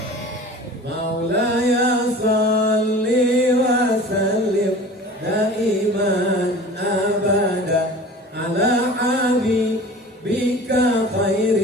Maulaya salli wa sallim daiman abada ala habibika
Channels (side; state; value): both; normal; correlation 0.40